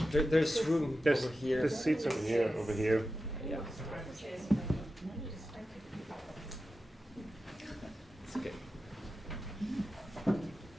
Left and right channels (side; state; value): both; normal; correlation 0.92